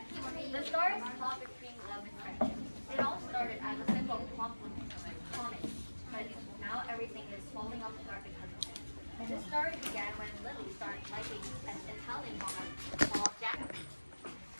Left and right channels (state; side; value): inverted; both; correlation -1.00